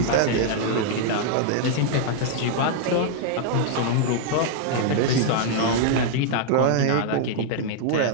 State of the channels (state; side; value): different; both; correlation -0.01